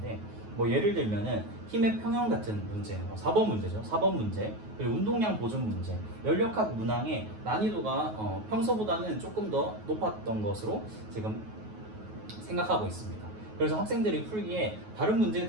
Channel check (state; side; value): late; left; 9.3 ms